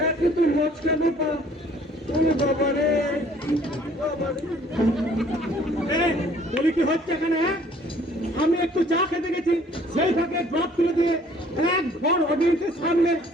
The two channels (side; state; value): both; normal; correlation 0.57